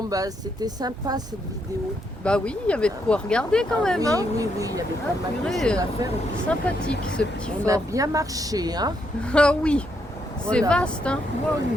bah, c'était sympa cette vidéo. Bah oui, il y avait de quoi regarder quand même, oui, hein. oui, oui, il y avait Ah, pas mal de purée, choses à faire. Et puis, sympathique ce petit on a fort. bien marché, hein. Ah oui, c'est Voilà. vaste, hein. Waouh.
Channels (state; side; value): normal; both; correlation 0.77